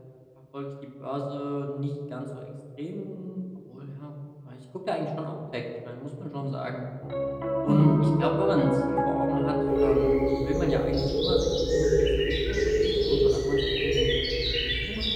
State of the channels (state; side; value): identical; both; correlation 1.00